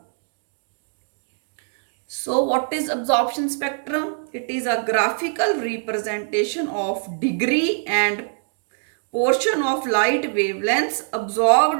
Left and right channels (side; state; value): left; silent; digital silence